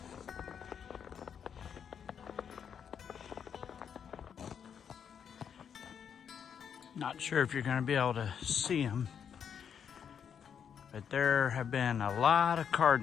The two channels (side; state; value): right; quieter; 7.7 dB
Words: Not sure if you're going to be able to see them, but there have been a lot of